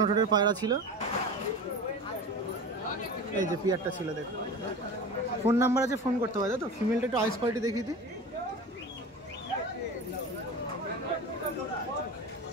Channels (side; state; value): both; normal; correlation 0.32